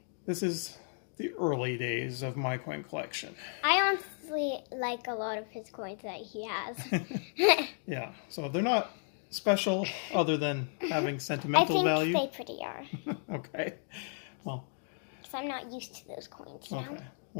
This is the early days of my coin collection. I honestly like a lot of his coins that he has. Yeah, so they're not special other than having sentimental value. I think they pretty are. Okay. Well, because I'm not used to those coins now. Okay.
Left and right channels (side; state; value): right; silent; 55 dB below the other